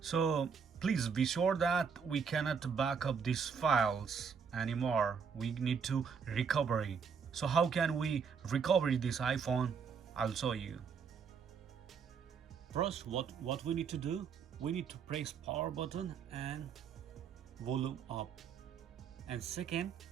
So please be sure that we cannot back up these files anymore. We need to recovery. So how can we recover this iPhone? I'll show you. First, what we need to do, we need to press power button and volume up. And second,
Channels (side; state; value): left; quieter; 6.3 dB